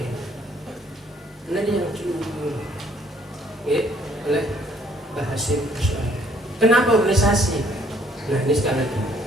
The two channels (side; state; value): both; normal; correlation 0.63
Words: Nah dia yang dulu oleh Bahasim. Kenapa organisasi? Nah ini sekali lagi,